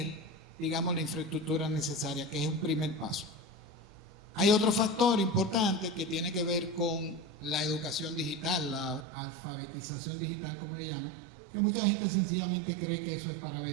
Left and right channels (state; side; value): drops out; left; at 9.1 s